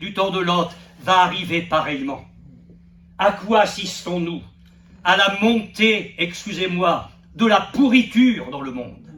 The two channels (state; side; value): identical; both; correlation 1.00